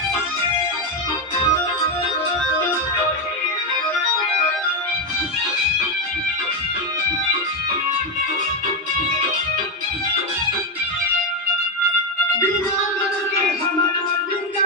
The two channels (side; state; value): both; normal; correlation 0.07